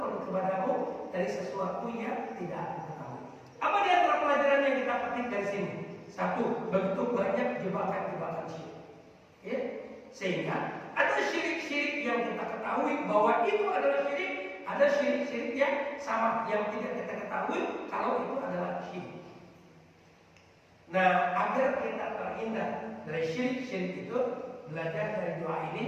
kepadamu dari sesuatu yang tidak aku ketahui. Apa di antara pelajaran yang kita petik dari sini? Satu, begitu banyak jebakan-jebakan syirik. Ya? Sehingga ada syirik-syirik yang kita ketahui bahwa itu adalah syirik, ada syirik-syirik yang sama yang tidak kita ketahui kalau itu adalah syirik. Nah, agar kita terhindar dari syirik-syirik itu, belajar dari doa ini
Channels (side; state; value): both; identical; correlation 1.00